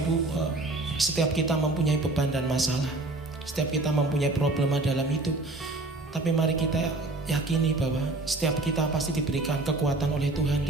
setiap kita mempunyai beban dan masalah. Setiap kita mempunyai problema dalam hidup. Tapi mari kita yakini bahwa setiap kita pasti diberikan kekuatan oleh Tuhan,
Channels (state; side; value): quieter; left; 3.0 dB